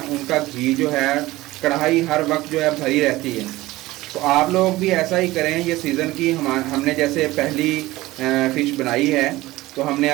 उनका घी जो है कढ़ाई हर वक्त जो है भरी रहती है। तो आप लोग भी ऐसा ही करें। ये सीज़न की हमने जैसे पहली फ़िश बनाई है तो हमने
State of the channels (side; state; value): left; quieter; 18.3 dB